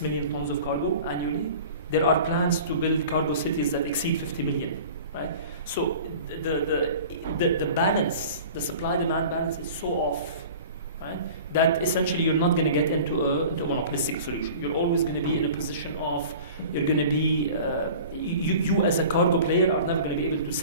million tons of cargo annually. There are plans to build cargo cities that exceed 50 million, right? So the balance, the supply-demand balance is so off, right? That essentially you're not going to get into a monopolistic solution. You're always going to be in a position of, you're going to be, you as a cargo player are never going to be able to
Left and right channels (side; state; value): both; inverted; correlation -0.41